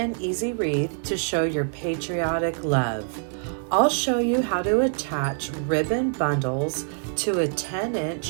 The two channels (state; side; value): silent; left; 62 dB below the other